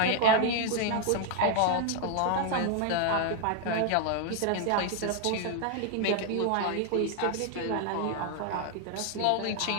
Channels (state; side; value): different; both; correlation 0.00